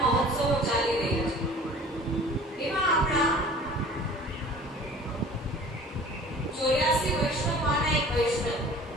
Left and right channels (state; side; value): normal; both; correlation 0.46